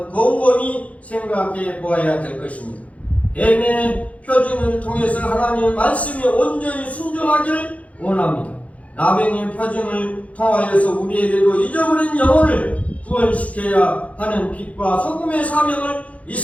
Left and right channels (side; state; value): right; late; 0.066 ms